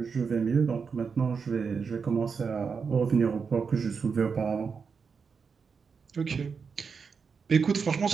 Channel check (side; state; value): left; quieter; 5.6 dB